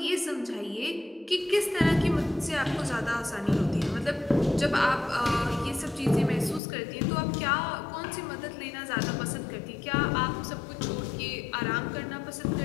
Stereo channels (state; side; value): drops out; right; at 6.6 s